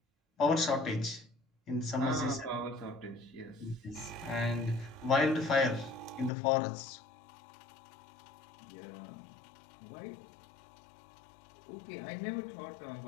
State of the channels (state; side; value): drops out; right; at 6.3 s